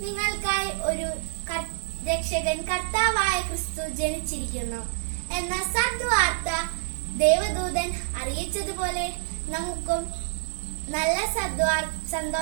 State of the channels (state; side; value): silent; left; 60 dB below the other